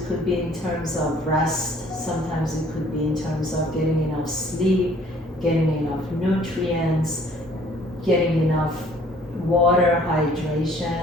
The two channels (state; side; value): normal; both; correlation 0.57